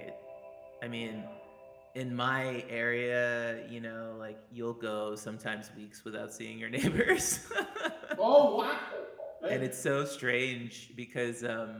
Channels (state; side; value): identical; both; correlation 1.00